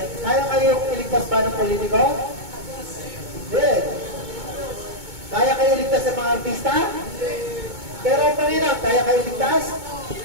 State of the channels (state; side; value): late; left; 2.2 ms